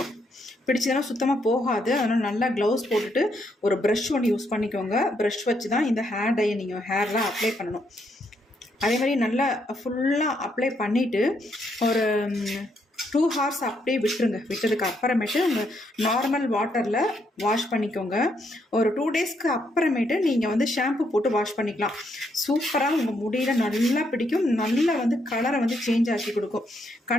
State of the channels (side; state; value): both; normal; correlation 0.75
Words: சுத்தமாக போகாது. அதனால் நல்லா க்ளவுஸ் போட்டுட்டு ஒரு ப்ரஷ் ஒன்று யூஸ் பண்ணிக்கோங்க. ப்ரஷ் வச்சு தான் இந்த ஹேர் டையை நீங்கள் ஹேரில் அப்ளை பண்ணணும். அதே மாதிரி நல்லா ஃபுல்லாக அப்ளை பண்ணிவிட்டு ஒரு 2 hours அப்படியே விட்டுருங்க. விட்டதுக்கு அப்புறமேட்டு உங்கள் நார்மல் வாட்டரில் வாஷ் பண்ணிக்கோங்க. ஒரு 2 daysக்கு அப்புறமேட்டு நீங்கள் வந்து ஷாம்பு போட்டு வாஷ் பண்ணிக்கலாம். சூப்பராக உங்கள் முடியில் நல்லா பிடிக்கும். நல்லா வந்து கலரை வந்து சேஞ்ச் ஆக்கி கொடுக்கும்.